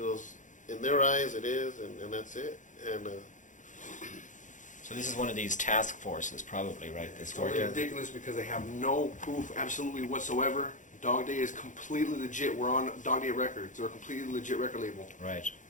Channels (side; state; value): right; late; 0.37 ms